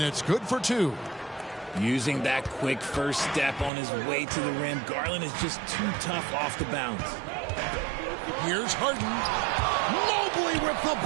it's good for two. Using that quick first step on his way to the rim, Garland is just too tough off the bounce. Here's Harden. Mobley with the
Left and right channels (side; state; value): left; drops out; at 3.7 s